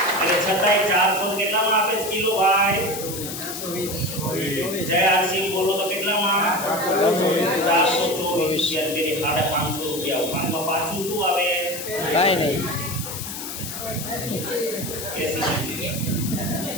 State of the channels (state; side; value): noise; left; hiss, 7 dB below the sound